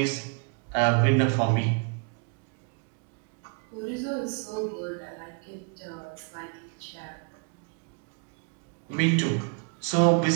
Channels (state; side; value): quieter; left; 37.7 dB